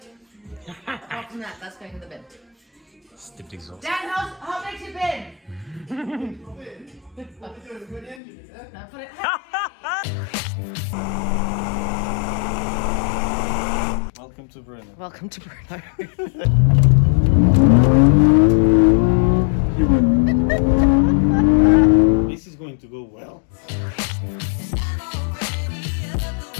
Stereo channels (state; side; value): drops out; right; at 8.2 s